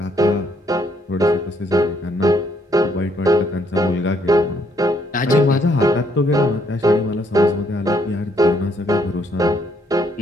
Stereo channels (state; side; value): normal; both; correlation 0.70